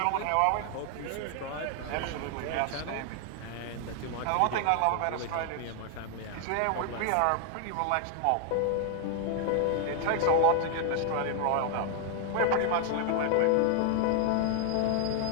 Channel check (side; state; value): both; different; correlation 0.00